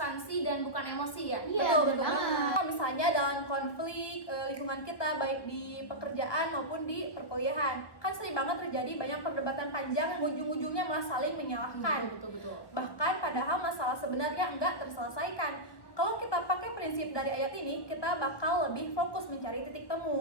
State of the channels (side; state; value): right; late; 1.3 ms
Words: dan bukan emosi ya? Iya, Betul, betul betul banget. banget. Misalnya dalam konflik lingkungan kita baik di pekerjaan maupun di perkuliahan, kan sering banget terjadi banyak perdebatan panjang yang ujung-ujungnya malah saling menyalahkan. Betul. Bahkan padahal masalah sebenarnya enggak terselesaikan. Kalau kita pakai prinsip dari ayat ini, kita bakal lebih fokus mencari titik